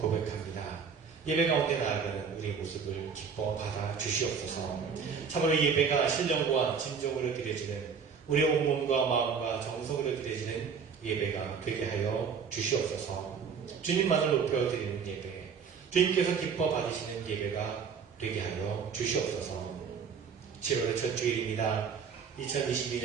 고백합니다. 예배 가운데 나아가는 우리의 모습을 기뻐 받아 주시옵소서. 참으로 예배가 신령과 진정으로 드려지는 우리의 온몸과 마음과 정성으로 드려지는 예배가 되게 하여 주시옵소서. 주님만을 높여드리는 예배, 주님께서 기뻐 받으시는 예배가 되게 하여 주시옵소서. 7월의 첫 주일입니다.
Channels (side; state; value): left; quieter; 6.2 dB